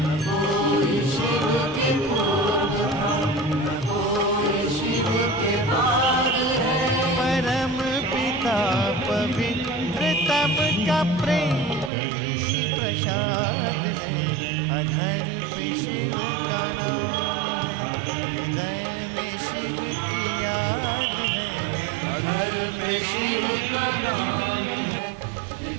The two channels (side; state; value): left; drops out; at 11.9 s